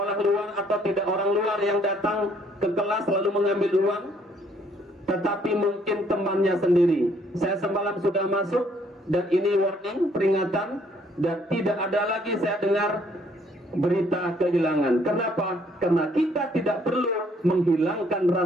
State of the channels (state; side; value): normal; both; correlation 0.65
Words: luar atau tidak orang luar yang datang ke kelas lalu mengambil uang, tetapi mungkin temannya sendiri. Saya semalam sudah masuk, dan ini warning, peringatan, dan tidak ada lagi saya dengar berita kehilangan. Kenapa? Karena kita tidak perlu menghilangkan